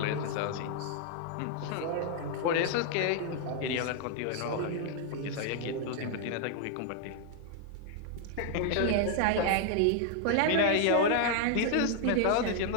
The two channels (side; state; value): both; different; correlation 0.00